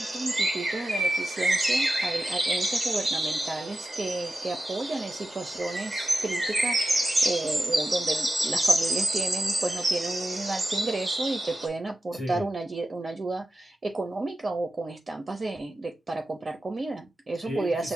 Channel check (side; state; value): both; normal; correlation 0.93